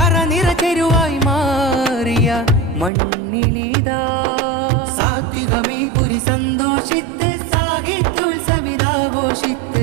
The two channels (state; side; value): drops out; left; at 2.9 s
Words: ചെരുവായി മാറിയ മണ്ണിലിതാ സാത്വികമീ പുരി സന്തോഷിത്ത്